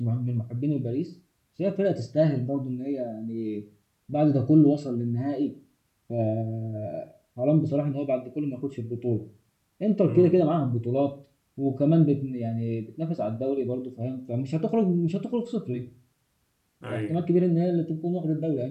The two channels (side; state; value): both; identical; correlation 1.00